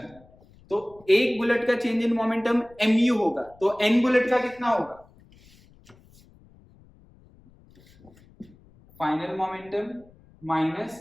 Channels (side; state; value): left; noise; rumble, 27 dB below the sound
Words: तो एक बुलेट का चेंज इन मोमेंटम mu होगा, तो n बुलेट का कितना होगा? Final momentum